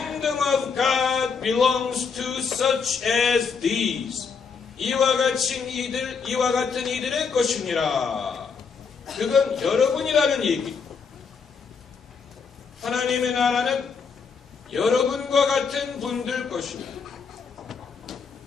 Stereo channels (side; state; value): right; quieter; 5.6 dB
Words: of God belongs to such as these. 이와 같은 이들의 것이니라. 그건 여러분이라는 얘기. 하나님의 나라는 여러분과 같은 분들 것입니다.